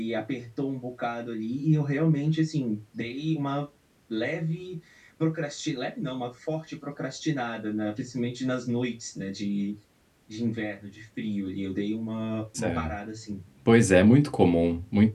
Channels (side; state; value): both; identical; correlation 1.00